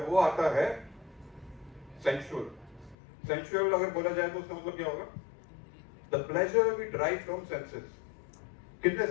आता है सेंसुअल। सेंसुअल अगर बोला जाए तो उसका मतलब क्या होगा? The pleasure we drive from senses. कितने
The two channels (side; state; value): right; drops out; at 3.0 s